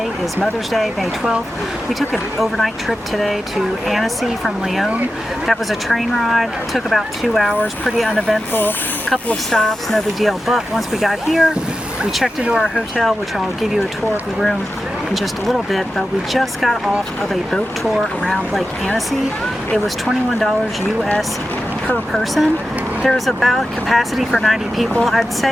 is Mother's Day, May 12th. We took an overnight trip today to Annecy from Lyon. That was a train ride. It took about 2 hours, pretty uneventful. A couple of stops, no big deal. But once we got here, we checked into our hotel, which I'll give you a tour of the room in just a little bit, but we just got off of a boat tour around Lake Annecy. It was $21 US per person. There's about capacity for 90 people. I'd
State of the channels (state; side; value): normal; both; correlation 0.91